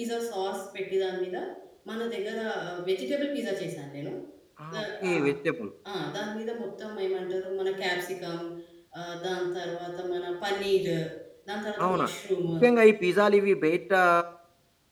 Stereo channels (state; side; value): identical; both; correlation 1.00